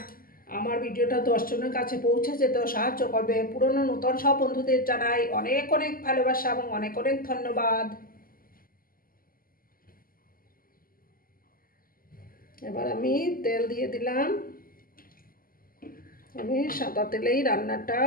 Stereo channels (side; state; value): right; late; 0.42 ms